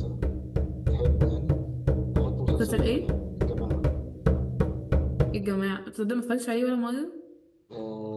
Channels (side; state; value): both; identical; correlation 1.00